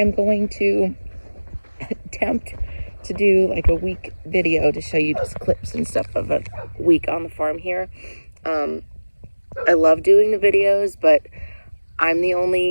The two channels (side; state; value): both; inverted; correlation -1.00